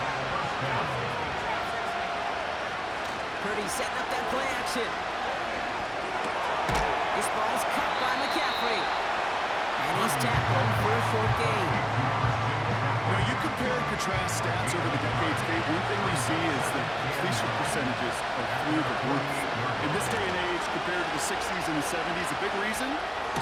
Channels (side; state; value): both; identical; correlation 1.00